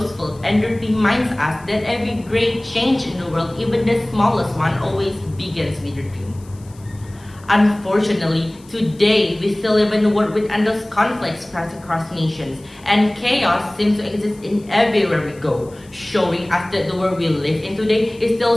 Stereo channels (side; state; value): left; noise; hiss, 27 dB below the sound